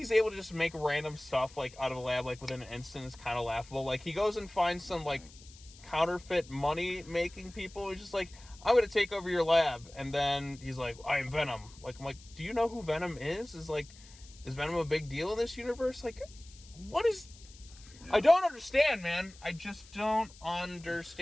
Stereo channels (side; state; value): left; noise; hiss, 22 dB below the sound